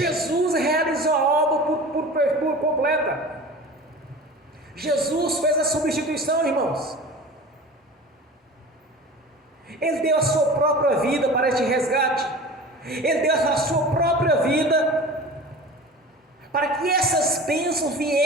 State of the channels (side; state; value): both; normal; correlation 0.36